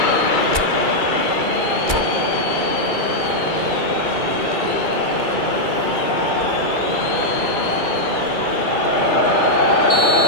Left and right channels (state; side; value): late; left; 2.3 ms